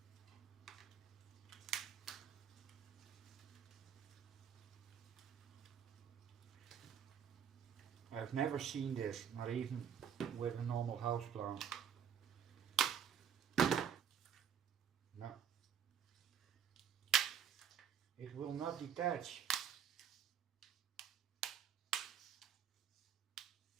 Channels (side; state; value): left; quieter; 8.1 dB